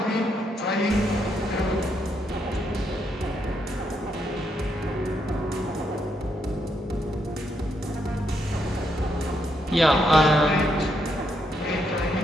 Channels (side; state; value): both; normal; correlation 0.78